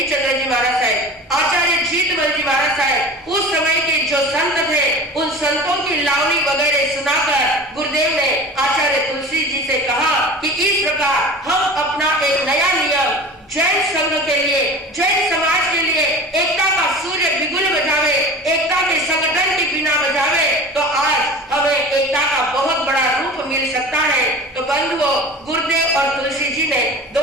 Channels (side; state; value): both; normal; correlation 0.37